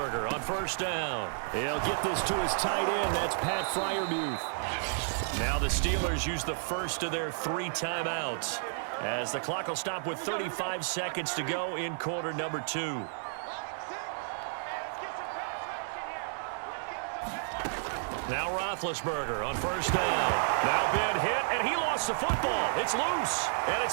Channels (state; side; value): silent; left; digital silence